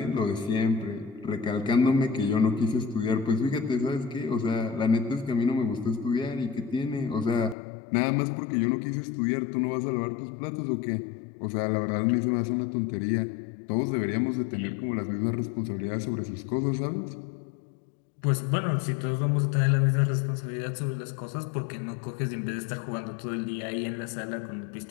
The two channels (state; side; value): drops out; right; at 7.6 s